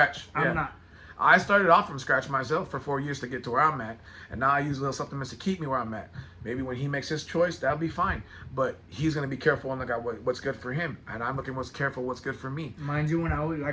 I'm not. I started off from scratch myself for 4 years to get to where I'm at, and now I use little supplements to keep me where I'm at. Maybe when he makes his choice, that'll be fine. But he's gonna be careful and look at what's good for him, and I'm looking what's good for me. Mind you, when I was,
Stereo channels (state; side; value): identical; both; correlation 1.00